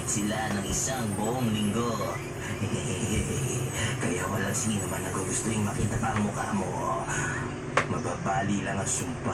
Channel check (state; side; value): identical; both; correlation 1.00